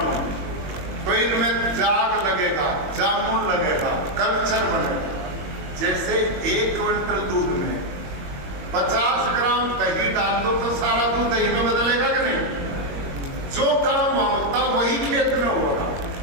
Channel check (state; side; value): late; left; 22 ms